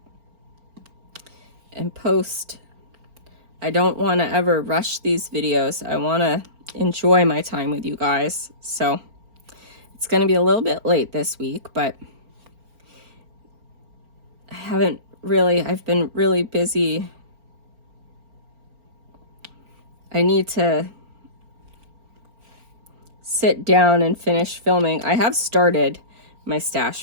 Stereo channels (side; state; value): left; late; 4.4 ms